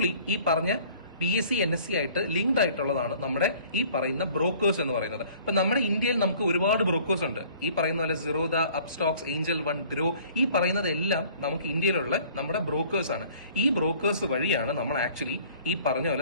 ഈ പറഞ്ഞ BSE NSE ആയിട്ട് ലിങ്ക്ഡ് ആയിട്ടുള്ളതാണ് നമ്മുടെ ഈ പറയുന്ന ബ്രോക്കേഴ്സ് എന്ന് പറയുന്നത്. ഇപ്പൊ നമ്മുടെ ഇന്ത്യയിൽ നമുക്ക് ഒരുപാട് ബ്രോക്കേഴ്സ് ഉണ്ട്. ഈ പറയുന്ന പോലെ Zerodha, Upstox, Angel one, grow, ഈ പറയുന്നതെല്ലാം നമുക്ക് ഇന്ത്യയിലുള്ള നമ്മുടെ ബ്രോക്കേഴ്സ് ആണ്. ഈ ബ്രോക്കേഴ്സ് വഴിയാണ് നമ്മൾ ആക്ച്വലി ഈ പറഞ്ഞ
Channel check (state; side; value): inverted; both; correlation -0.52